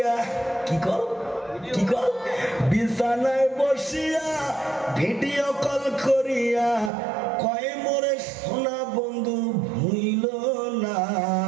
কি কল বিছানায় বসিয়া ভিডিও কল করিয়া কয় মোরে সোনা বন্ধু ভুইল না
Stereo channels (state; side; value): drops out; left; at 6.9 s